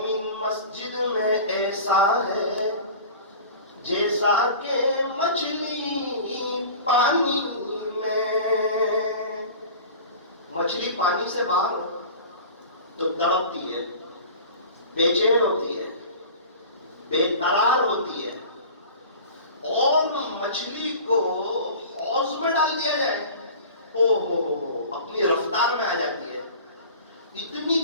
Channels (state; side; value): inverted; both; correlation -0.39